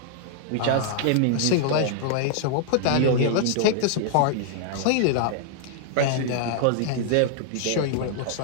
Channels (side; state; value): both; different; correlation -0.01